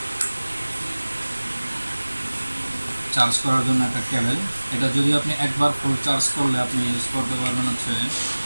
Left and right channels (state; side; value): inverted; both; correlation -1.00